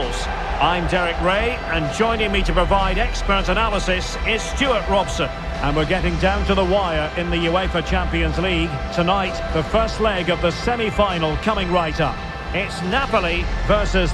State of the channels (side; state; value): both; identical; correlation 1.00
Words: I'm Derek Ray, and joining me to provide expert analysis is Stuart Robson. And we're getting down to the wire in the UEFA Champions League. Tonight, the first leg of the semi-final coming right up. It's Napoli versus